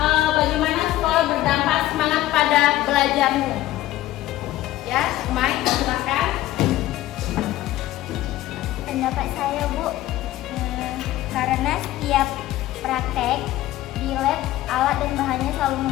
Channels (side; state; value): right; quieter; 15.1 dB